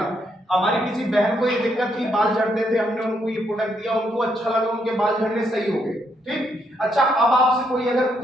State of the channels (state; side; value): normal; both; correlation 0.76